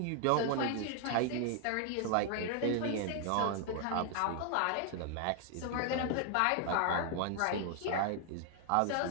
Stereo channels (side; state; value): both; different; correlation 0.00